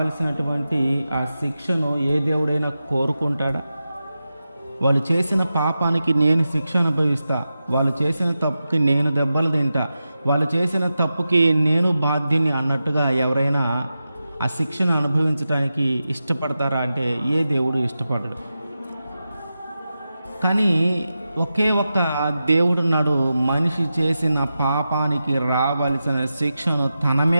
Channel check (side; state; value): both; inverted; correlation -0.92